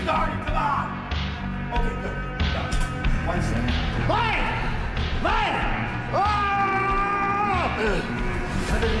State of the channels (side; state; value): both; identical; correlation 1.00